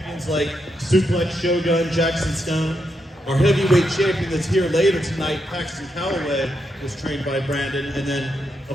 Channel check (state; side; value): normal; both; correlation 0.82